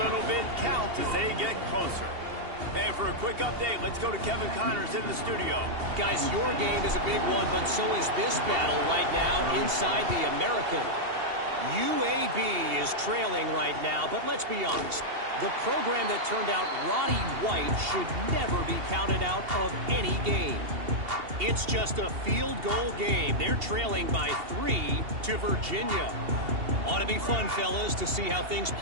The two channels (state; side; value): late; left; 2.8 ms